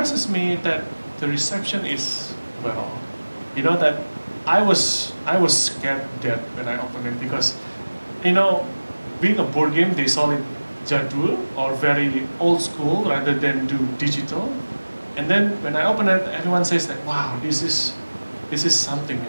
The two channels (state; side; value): inverted; both; correlation -1.00